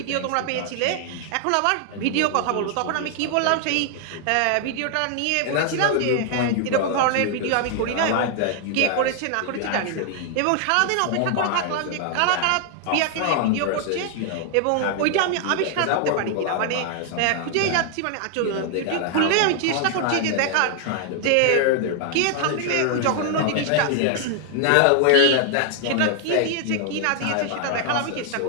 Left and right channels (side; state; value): both; different; correlation 0.00